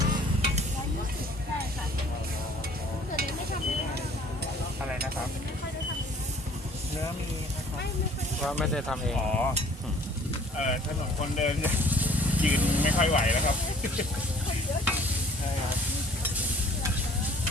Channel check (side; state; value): both; normal; correlation 0.53